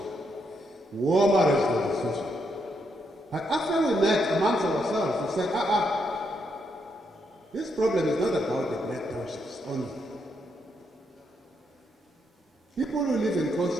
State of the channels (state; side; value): normal; both; correlation 0.78